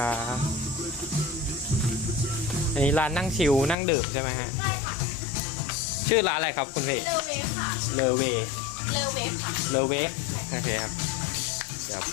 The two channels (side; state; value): right; drops out; at 3.8 s